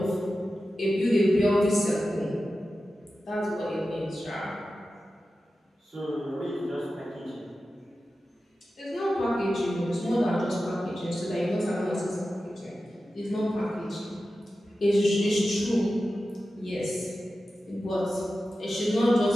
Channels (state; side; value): normal; both; correlation 0.93